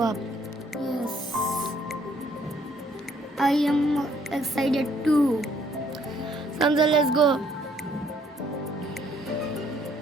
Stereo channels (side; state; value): both; normal; correlation 0.65